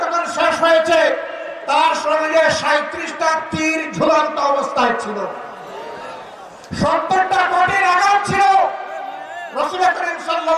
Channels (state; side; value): identical; both; correlation 1.00